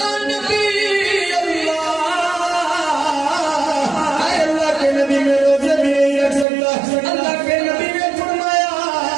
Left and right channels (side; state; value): left; drops out; at 6.5 s